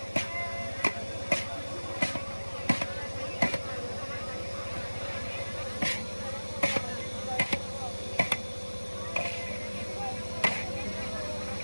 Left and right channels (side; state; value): both; inverted; correlation -1.00